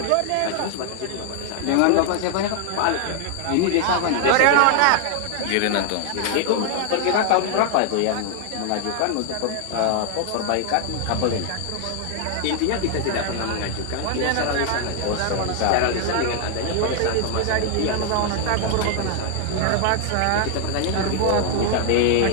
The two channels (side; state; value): both; different; correlation 0.00